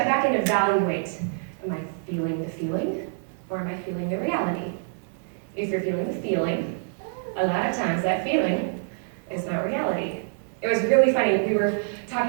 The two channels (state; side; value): silent; left; digital silence